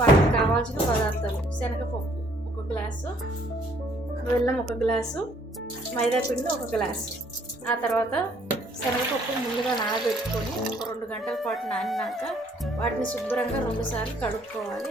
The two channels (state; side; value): normal; both; correlation 0.63